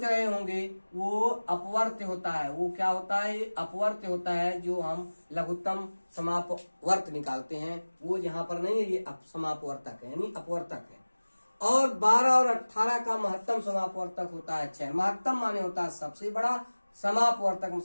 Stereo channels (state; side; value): inverted; both; correlation -1.00